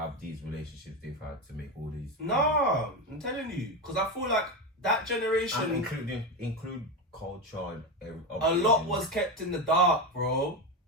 these relationships they've had to make all these? No, I'm telling you, because I feel like that generation, and include culture and a lot was kept in the dark, bro.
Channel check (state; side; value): normal; both; correlation 0.16